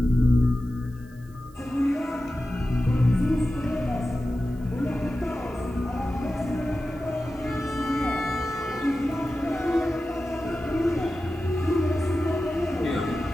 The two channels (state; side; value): noise; right; hiss, 29 dB below the sound